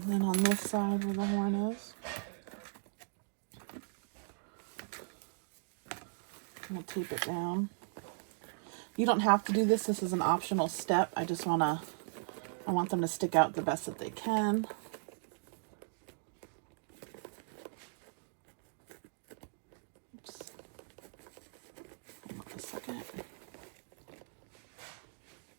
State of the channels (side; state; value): left; silent; digital silence